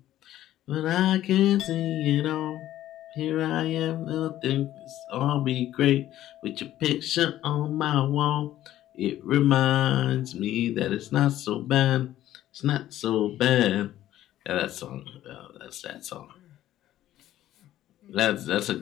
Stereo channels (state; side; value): quieter; right; 13.3 dB